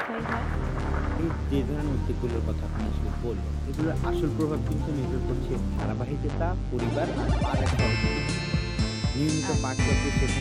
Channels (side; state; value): both; identical; correlation 1.00